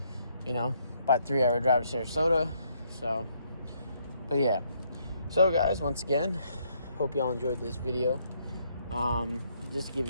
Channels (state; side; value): inverted; both; correlation -0.71